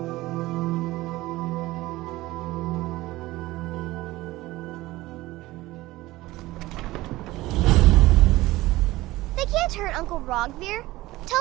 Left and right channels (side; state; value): left; quieter; 18.3 dB